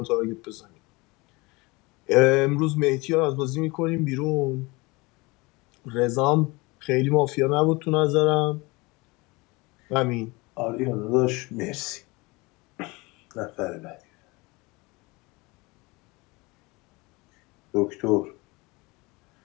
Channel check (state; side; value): quieter; right; 24.6 dB